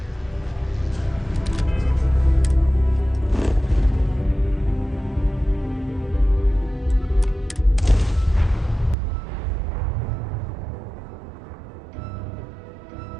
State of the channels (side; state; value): left; drops out; at 9.0 s